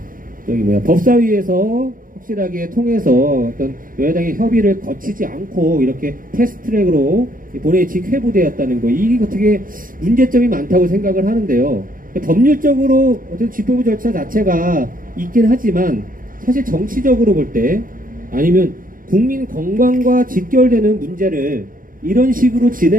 법사위에서 확실하게 통해서 어떤 여야당의 협의를 거치지 않고 이렇게 패스트트랙으로 본회의 직회부되었다는 거, 이게 어떻게 문제점이 많다고 생각을 하는데요. 법률적으로 어떤 집행부 절차 자체가 있긴 하지만 사실 정치적으로 볼 때 아니면 국민 건강과 직결되는 문제를 이런 식으로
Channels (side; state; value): left; late; 0.40 ms